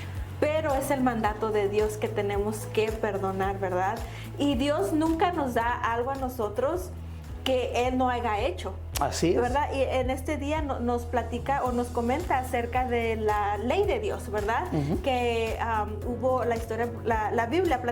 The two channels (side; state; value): both; identical; correlation 1.00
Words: pero es el mandato de Dios que tenemos que perdonar, ¿verdad? Y Dios nunca nos da algo a nosotros que Él no haya hecho. Así es. ¿Verdad? Y en este día nos platica o nos comenta acerca de la ley de Dios, ¿verdad? Que hubo la historia, la Biblia